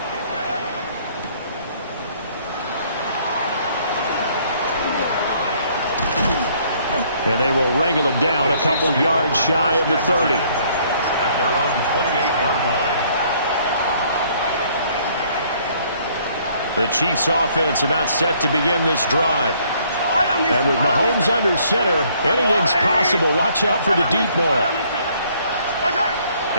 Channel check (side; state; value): both; inverted; correlation -0.63